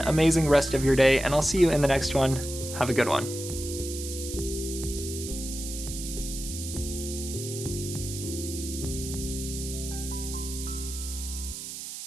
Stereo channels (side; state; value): right; noise; hiss, 8 dB below the sound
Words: rest of your day, and I'll see you in the next one. Have a good one.